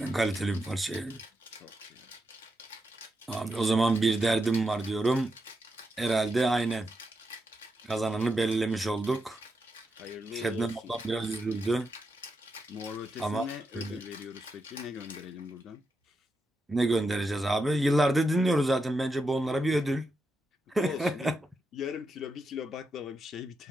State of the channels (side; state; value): both; normal; correlation 0.85